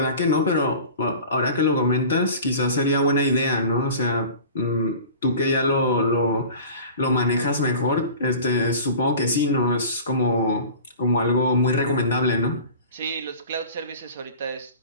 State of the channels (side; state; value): both; inverted; correlation -0.40